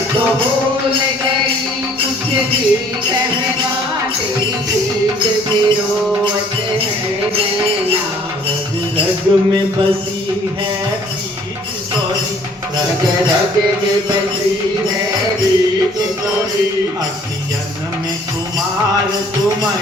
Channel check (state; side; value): normal; both; correlation 0.58